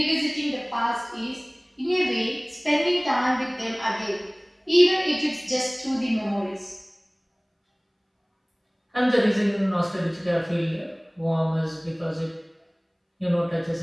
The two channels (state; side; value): identical; both; correlation 1.00